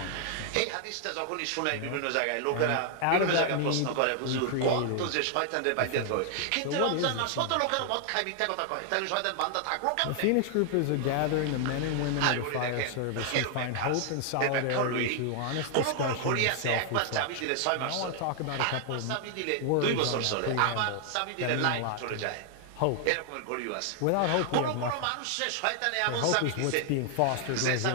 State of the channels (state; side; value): different; both; correlation 0.00